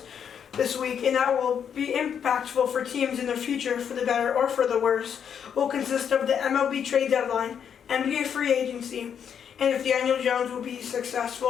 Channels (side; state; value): right; quieter; 8.0 dB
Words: this week, and that will be impactful for teams in the future, for the better or for the worse, will consist of the MLB trade deadline, NBA free agency, and if Daniel Jones will be